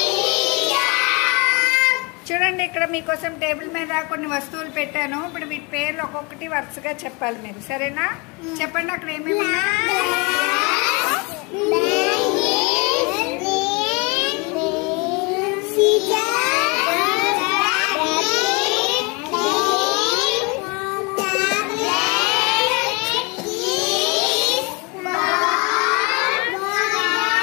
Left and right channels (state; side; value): quieter; right; 28.7 dB